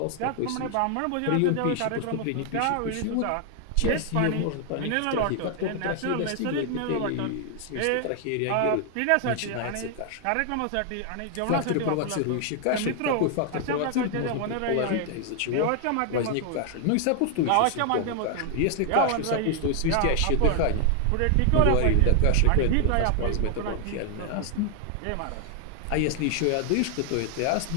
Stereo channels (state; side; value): different; both; correlation 0.00